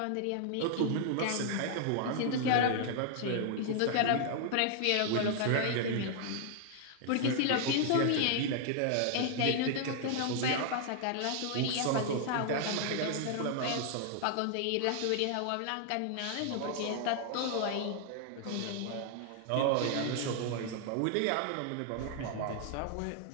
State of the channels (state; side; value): different; both; correlation 0.00